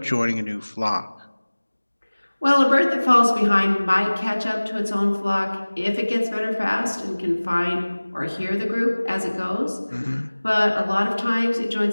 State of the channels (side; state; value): both; inverted; correlation -1.00